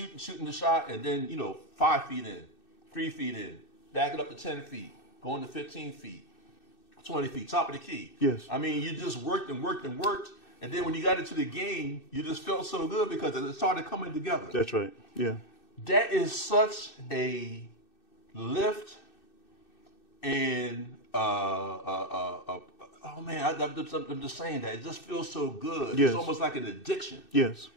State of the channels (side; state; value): right; late; 2.6 ms